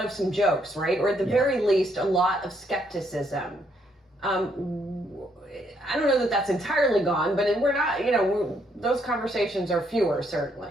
of some jokes, right? Or at the very least, a lot of skepticism. I don't know that that's entirely gone, but we're not, those conversations are fewer,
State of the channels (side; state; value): both; normal; correlation 0.72